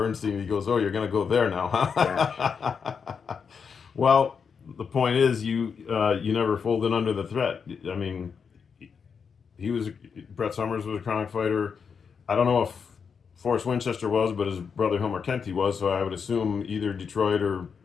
He goes, "Oh, you're going to go there now, Yes. huh?" Well, the point is, you never folded under the threat. I mean, he was Bret Summers was a Kronk fighter. I don't know if Forrest Winchester was, but his brother Hilmer Kenty was. So I would assume either Detroit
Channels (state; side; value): quieter; right; 6.2 dB